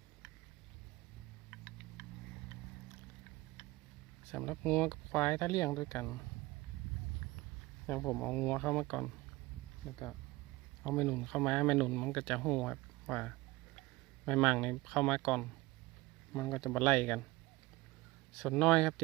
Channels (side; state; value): left; quieter; 20.9 dB